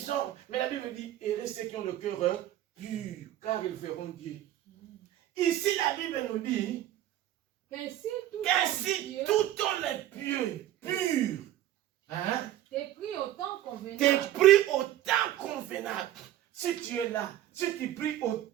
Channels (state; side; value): quieter; left; 13.2 dB